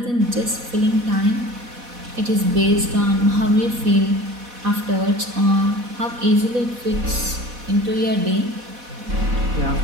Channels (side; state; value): left; late; 4.1 ms